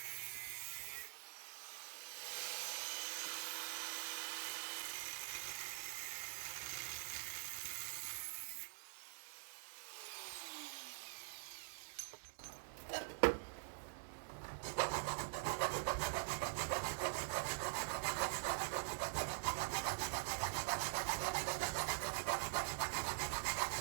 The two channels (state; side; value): silent; left; digital silence